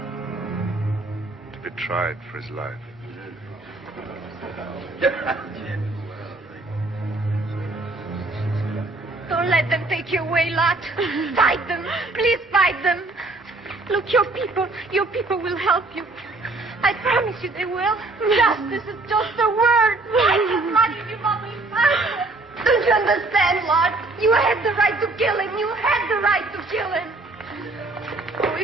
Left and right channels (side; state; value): left; quieter; 3.1 dB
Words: To be tried for his life. Don't let them take you away, Lot. Fight them. Please fight them. Look, your people will help you. I promise you they will. Justice is just a word. Fight them, Lot, if you want me. Fight them. Don't you understand, Lot? You had the right to kill him. You had the right to kill him. Oh,